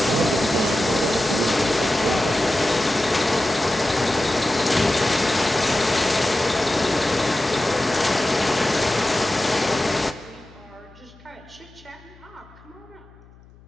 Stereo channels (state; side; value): noise; left; hum, 25 dB below the sound